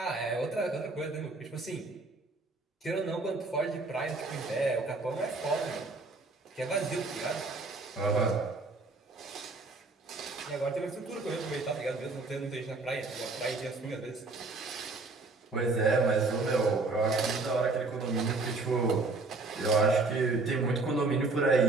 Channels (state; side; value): quieter; left; 3.5 dB